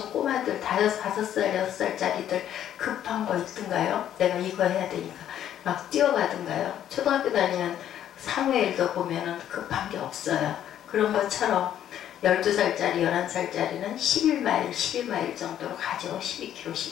꼬마들 5살, 6살짜리들 급한 거 있던가요? 내가 이거 해야 되니까 막 뛰어가던가요? 초등학교 다니는 사무엘도 보면은 급한 게 없어요. 그런 것처럼 12살짜리, 11살짜리는 11마일 정도로 가죠. 12km,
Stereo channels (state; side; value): quieter; right; 10.8 dB